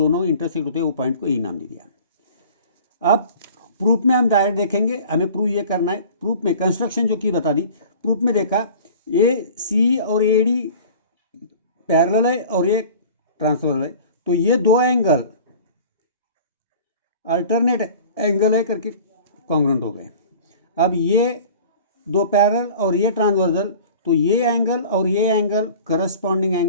इंटरसेक्ट होते हैं वो पॉइंट को A नाम दे दिया। अब प्रूफ में हम डायरेक्ट देखेंगे, हमें प्रूफ ये करना है। प्रूफ में कंस्ट्रक्शन जो की बता दी, प्रूफ में देखा AC और AD पैरेलल है और ये ट्रांसफर है, तो ये दो एंगल अल्टरनेट एंगल है करके कॉन्ग्रुएंट हो गए। अब ये दो पैरेलल और ये ट्रांसवर्सल, तो ये एंगल और ये एंगल करस्पॉन्डिंग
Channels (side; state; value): both; inverted; correlation -0.43